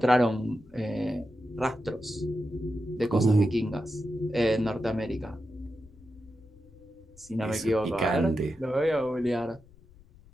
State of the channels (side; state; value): left; noise; rumble, 25 dB below the sound